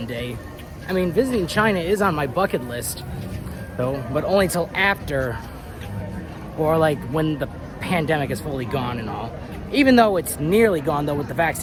day. I mean, visiting China is on my bucket list, though, but only till after, or like when the pandemic is fully gone and all. Even though it's nearly gone, though, with the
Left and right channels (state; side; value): identical; both; correlation 1.00